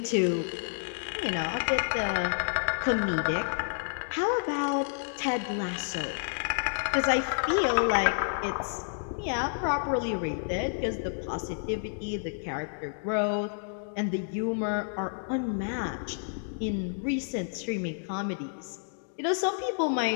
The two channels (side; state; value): right; silent; digital silence